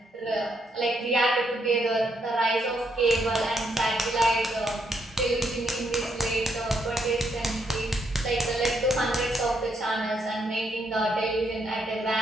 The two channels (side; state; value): both; normal; correlation 0.76